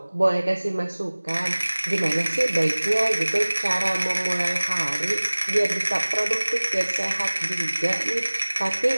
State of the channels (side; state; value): both; inverted; correlation -1.00